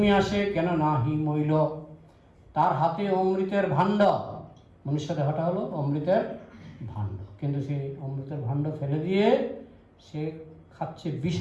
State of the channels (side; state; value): both; identical; correlation 1.00